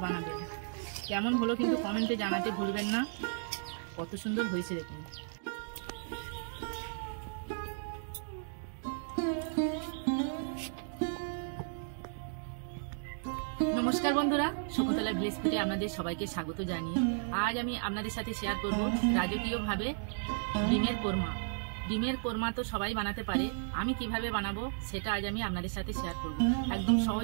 বানাবেন। কেমন হলো কিন্তু কমেন্টে জানাতে ভুলবেন না। কত সুন্দর হয়েছে দেখুন। নমস্কার বন্ধুরা, শকুন্তলা ভিলেজ ফুডে আপনাদের সবাইকে স্বাগত জানিয়ে আজ আমি আপনাদের সাথে শেয়ার করব রাজকীয়ভাবে ডিমের কোরমা। ডিমের কোরমা তো সবাই বানাতে পারে, আমি কিভাবে বানাবো সেটা আজ আমি আপনাদের সাথে শেয়ার করব। একদম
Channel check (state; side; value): silent; left; digital silence